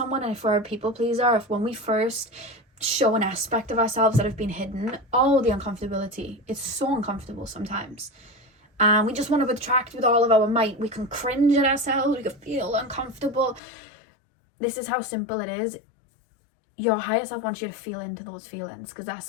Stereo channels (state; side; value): drops out; right; at 13.6 s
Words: and if we're a people pleaser, if when we first show an aspect of ourselves that have been hidden, all the uncomfortability, it's so uncomfortable sometimes. And we just want to retract with all of our might. We can cringe at ourselves. We can feel uncomfortable. This is how simple it is. Your higher self wants you to feel into those feelings, because